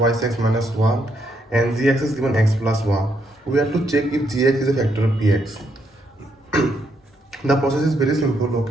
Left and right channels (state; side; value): normal; both; correlation 0.76